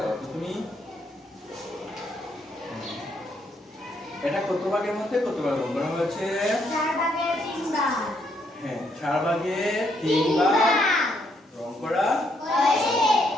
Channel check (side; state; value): both; normal; correlation 0.73